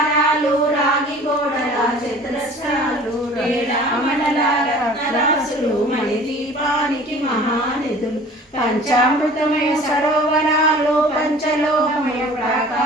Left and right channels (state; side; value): normal; both; correlation 0.46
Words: కమలల రత్నరాసులు మణిదీపానికి మహానిధులు పంచామృతమయ సరోవరాలు పంచలోహమయ